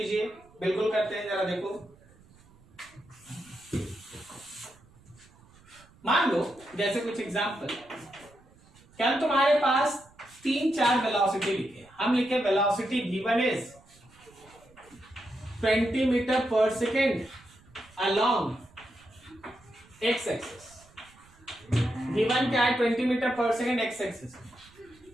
बिल्कुल करते हैं, जरा देखो। मान लो जैसे कुछ एग्जांपल, क्या तुम्हारे पास 3-4 वेलोसिटी लिखे। हम लिखे velocity v1 is 20 metre per second along x axis. v1 क्या है, 20 metre per second x axis.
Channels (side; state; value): right; noise; rumble, 27 dB below the sound